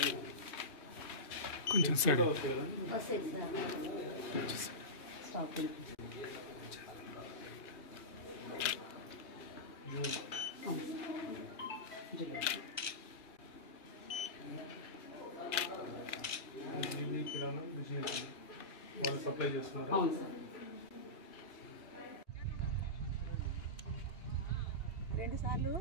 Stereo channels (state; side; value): late; right; 2.8 ms